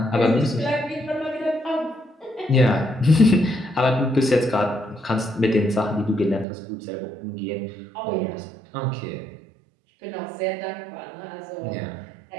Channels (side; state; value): left; drops out; at 6.5 s